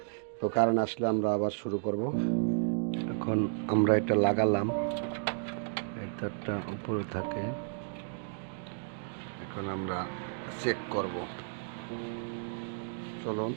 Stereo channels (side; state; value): left; silent; digital silence